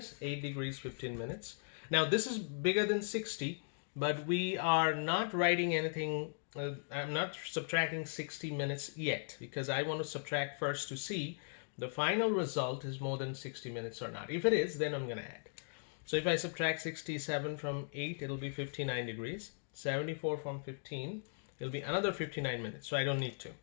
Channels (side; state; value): right; silent; digital silence